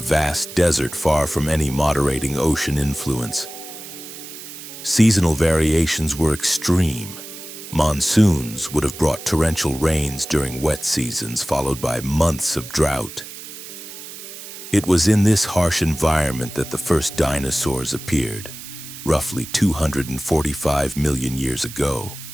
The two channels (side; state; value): right; noise; hiss, 13 dB below the sound